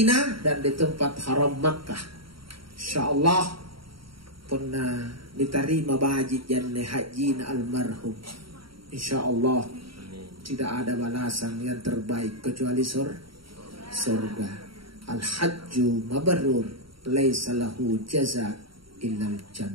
dan di tempat haram Makkah. Insyaallah pernah diterima baji janne haji almarhum. Insyaallah tidak ada balasan yang terbaik kecuali surga. Al-hajju mabrur laisa lahu jaza illa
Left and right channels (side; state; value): left; late; 0.74 ms